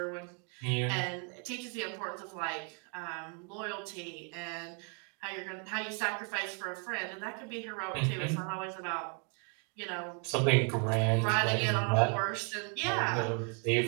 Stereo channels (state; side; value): quieter; left; 39.1 dB